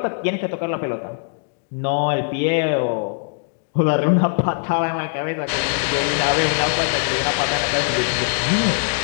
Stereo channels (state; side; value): silent; right; digital silence